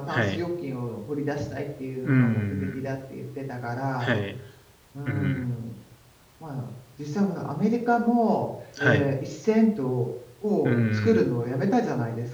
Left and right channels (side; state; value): both; identical; correlation 1.00